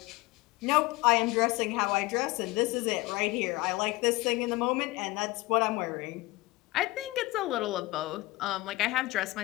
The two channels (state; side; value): quieter; right; 20.4 dB